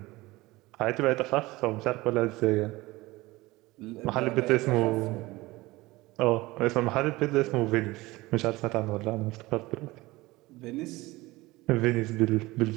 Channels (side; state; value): left; quieter; 20.3 dB